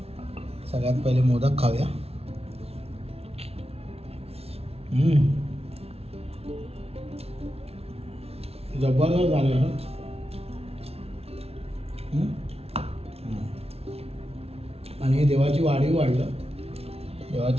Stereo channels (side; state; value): left; late; 0.30 ms